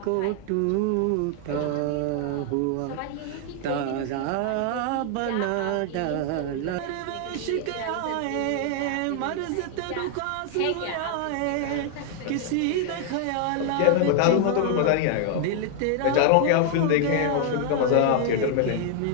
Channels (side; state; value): both; different; correlation 0.00